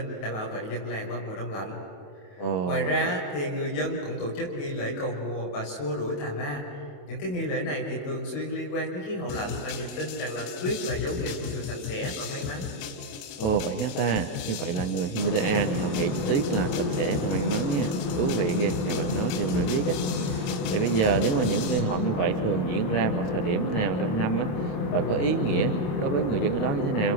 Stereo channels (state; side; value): late; right; 28 ms